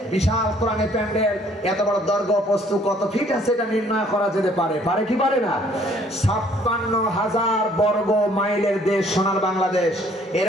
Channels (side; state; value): both; normal; correlation 0.60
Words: বিশাল কোরআনের প্যান্ডেল, এত বড় দৈর্ঘ্য প্রস্থ কত ফিট আছে এটা নির্ণয় করা যেতে পারে কি পারে না? 56,000 বর্গ মাইলের দেশ সোনার বাংলাদেশ,